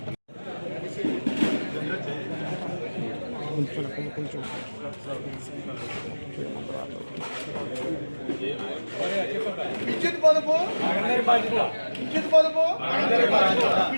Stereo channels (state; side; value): inverted; both; correlation -1.00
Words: విద్యుత్ పొదుపు విద్యుత్ పొదుపు